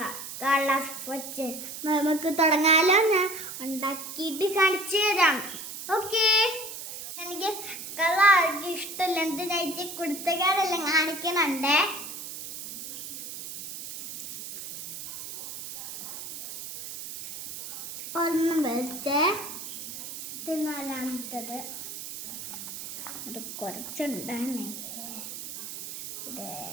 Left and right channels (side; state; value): right; noise; hiss, 9 dB below the sound